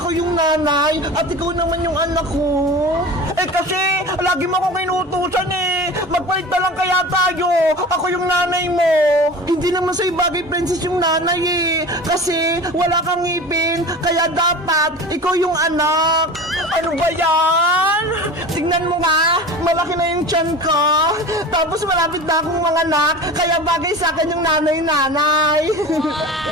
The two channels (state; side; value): normal; both; correlation 0.35